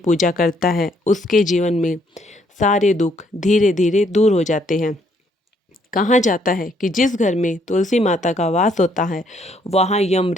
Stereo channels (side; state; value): both; normal; correlation 0.69